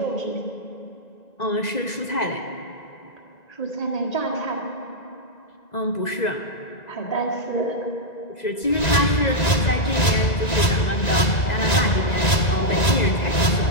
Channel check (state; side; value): late; right; 1.9 ms